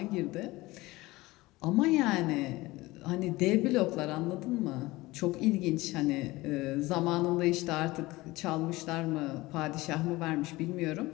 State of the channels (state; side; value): quieter; right; 20.1 dB